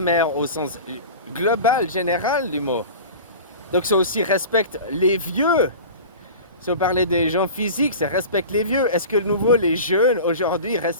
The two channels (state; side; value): inverted; both; correlation -0.35